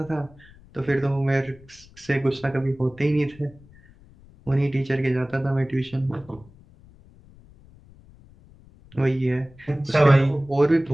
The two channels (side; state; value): left; noise; rumble, 25 dB below the sound